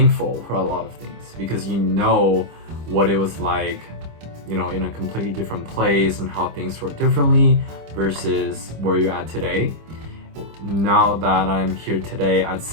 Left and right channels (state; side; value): late; left; 25 ms